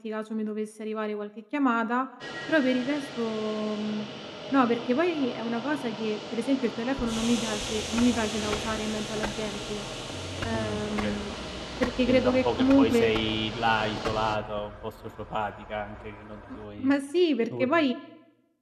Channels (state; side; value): identical; both; correlation 1.00